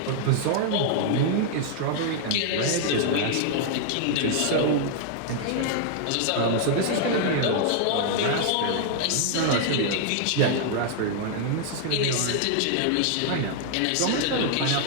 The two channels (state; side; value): different; both; correlation -0.01